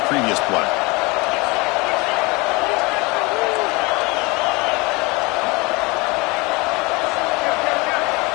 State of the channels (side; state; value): right; quieter; 25.6 dB